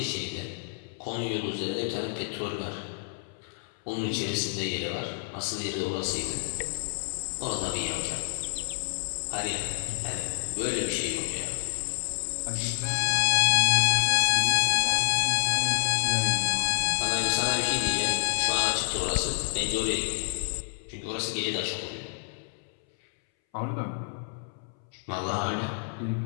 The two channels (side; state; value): right; silent; 59 dB below the other